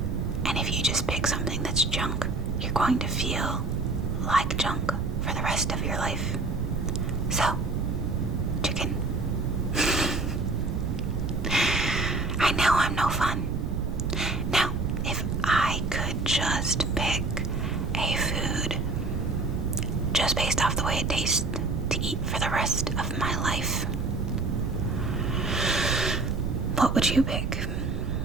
And if you just pick something that's junk, you're going to feel like junk for the rest of your life. So, chicken. fun. Now, if I could just pick a food just based off the way it tastes to eat for the rest of my life, what would you pick?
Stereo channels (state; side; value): noise; right; rumble, 1 dB below the sound